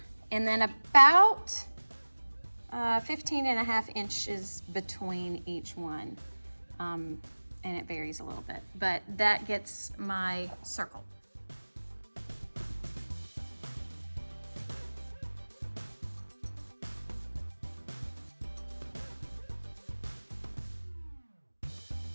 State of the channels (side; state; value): both; inverted; correlation -1.00